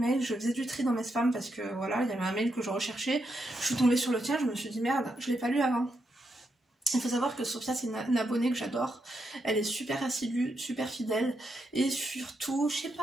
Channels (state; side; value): normal; both; correlation 0.82